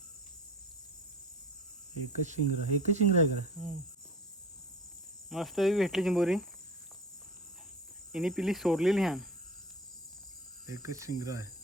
एकच शिंगरा आहे का मस्त भेटली चिंबोरी हिने पिली सोडलेली ह्या एकच शिंगरा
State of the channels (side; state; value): both; normal; correlation 0.37